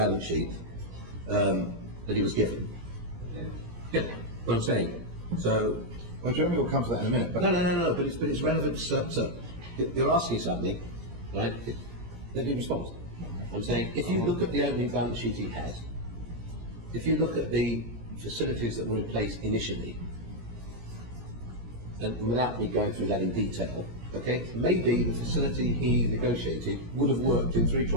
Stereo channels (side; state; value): left; late; 17 ms